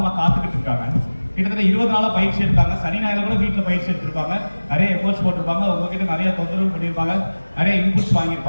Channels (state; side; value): inverted; both; correlation -1.00